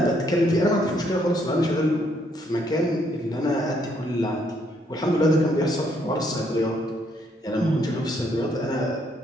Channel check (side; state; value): both; normal; correlation 0.70